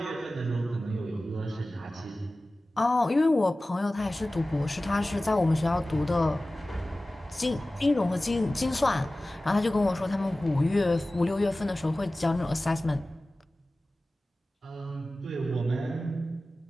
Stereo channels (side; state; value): both; normal; correlation 0.97